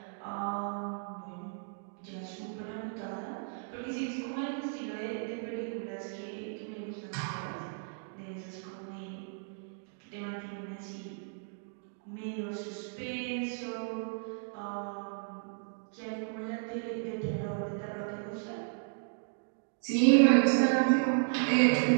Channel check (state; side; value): silent; left; digital silence